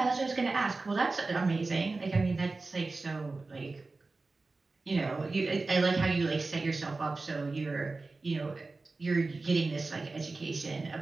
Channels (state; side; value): quieter; left; 3.6 dB